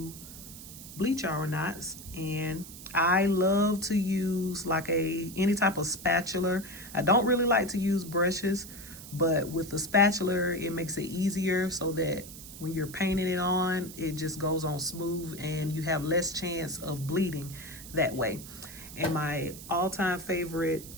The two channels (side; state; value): right; noise; hiss, 14 dB below the sound